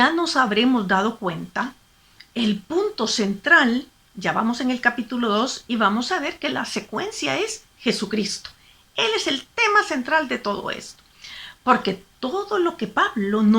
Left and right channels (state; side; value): identical; both; correlation 1.00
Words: nos habremos dado cuenta, el punto central, ya vamos en el capítulo 2 y vamos a ver que la secuencia es Jesucristo. Él es el tema central de todo esto. Porque todo lo que Pablo